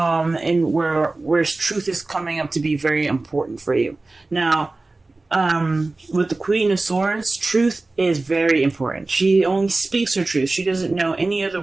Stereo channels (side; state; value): left; quieter; 3.3 dB